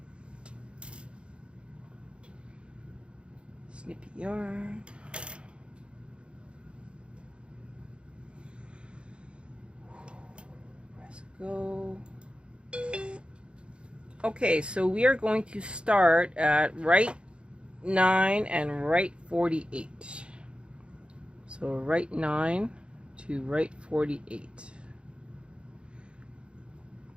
Snip your yarn. Press go. Okay, so we are going to start at right 9 and right 48. So right 9 to right 48.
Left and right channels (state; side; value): late; left; 0.057 ms